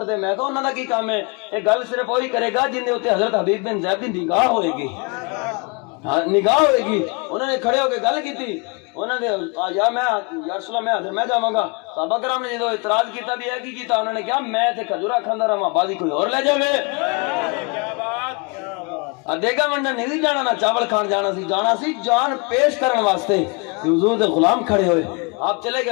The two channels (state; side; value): quieter; right; 31.6 dB